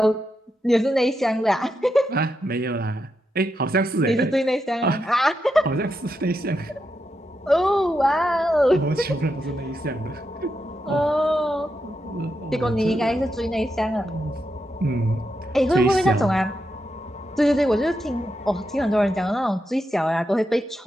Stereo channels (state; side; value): normal; both; correlation 0.85